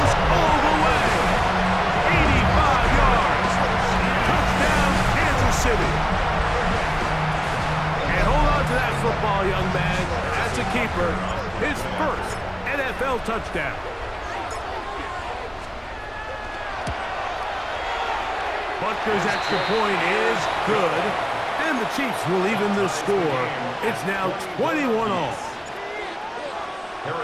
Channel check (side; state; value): both; identical; correlation 1.00